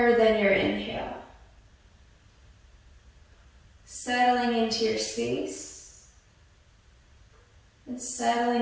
than your inhale. Settling into your space and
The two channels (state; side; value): identical; both; correlation 1.00